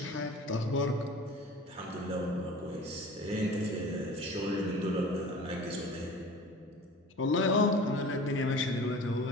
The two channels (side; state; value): both; normal; correlation 0.41